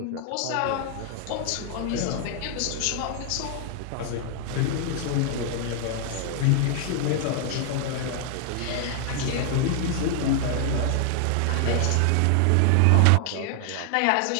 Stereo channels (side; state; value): both; different; correlation 0.00